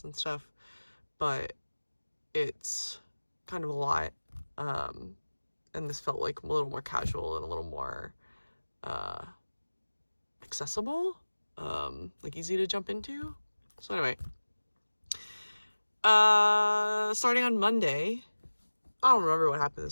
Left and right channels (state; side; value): inverted; both; correlation -1.00